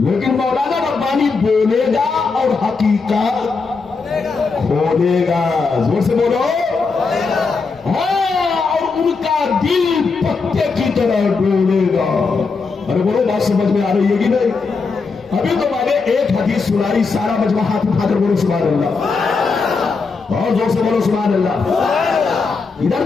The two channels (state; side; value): quieter; right; 4.6 dB